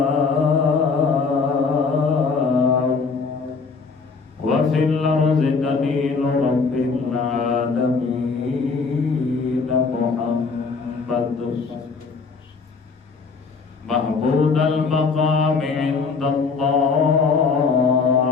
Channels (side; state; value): right; quieter; 4.8 dB